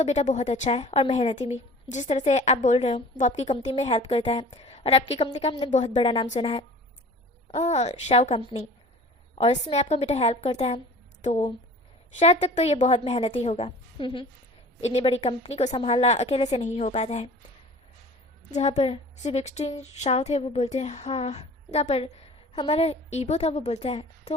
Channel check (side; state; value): both; normal; correlation 0.44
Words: बेटा बहुत अच्छा है और मेहनती भी, जिस तरह से आप बोल रहे हो वो आपकी कंपनी में हेल्प करता है और आपकी कंपनी का हमने बहुत बड़ा नाम सुना है शाव कंपनी, और इसमें आपका बेटा हेल्प करता है तो शायद तक तो ये बहुत मेहनती होगा। इतनी बड़ी कंपनी को संभालना अकेले से नहीं हो पाता है। जहाँ पर सिबक्सटीन शाव थे वो बोलते हैं हाँ। जहाँ पर हमारा ईबो था वो बोलता है